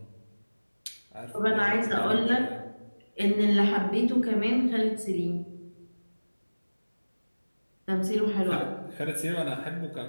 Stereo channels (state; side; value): inverted; both; correlation -1.00